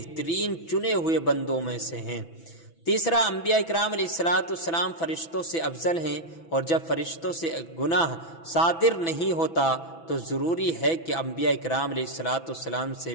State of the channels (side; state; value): right; late; 6.0 ms